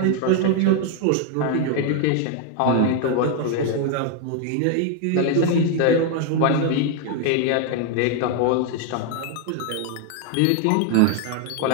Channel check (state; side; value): different; both; correlation 0.01